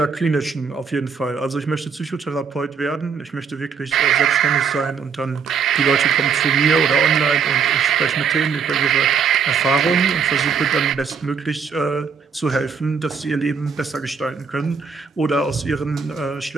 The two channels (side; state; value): left; quieter; 6.1 dB